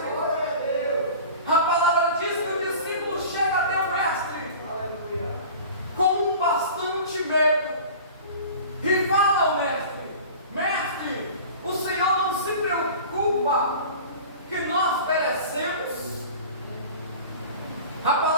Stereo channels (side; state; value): both; inverted; correlation -0.39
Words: A palavra diz que o discípulo chega até o mestre com bastante medo e fala ao mestre: mestre, o Senhor não se preocupa que nós perecemos? A